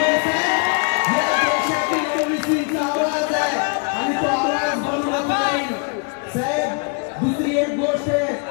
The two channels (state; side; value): quieter; right; 34.5 dB